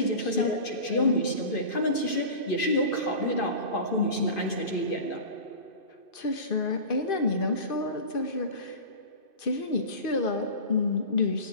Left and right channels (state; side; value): late; right; 2.5 ms